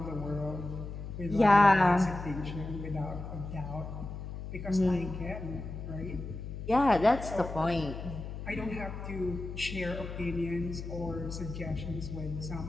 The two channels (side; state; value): left; noise; hum, 8 dB below the sound